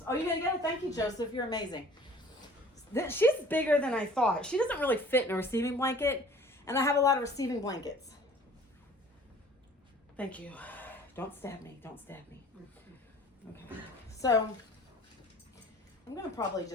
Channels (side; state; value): both; normal; correlation 0.49